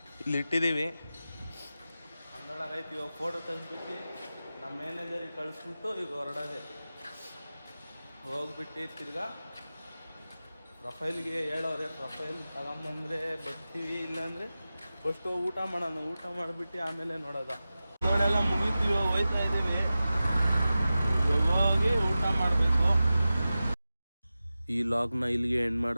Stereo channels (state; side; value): inverted; both; correlation -0.94